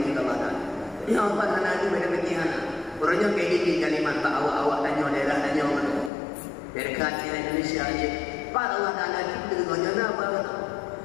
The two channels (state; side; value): drops out; right; at 6.1 s